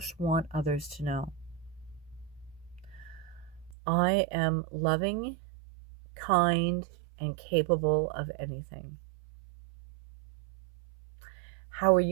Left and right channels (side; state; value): left; drops out; at 3.8 s